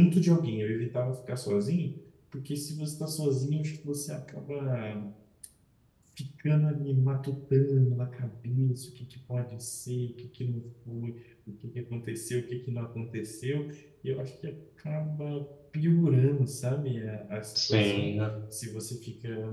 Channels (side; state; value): both; identical; correlation 1.00